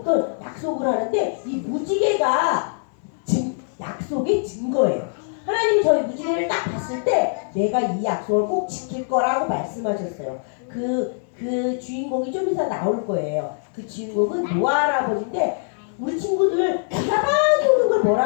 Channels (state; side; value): silent; right; digital silence